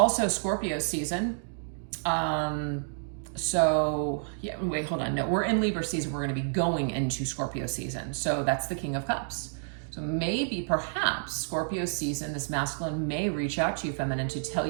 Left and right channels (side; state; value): left; silent; digital silence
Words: Scorpio season. So yeah, wait, hold on. No, we're in Libra season. We're going to be going into Scorpio season. So that's the King of Cups. So maybe, perhaps, Scorpio season, this masculine may reach out to you, feminine, to tell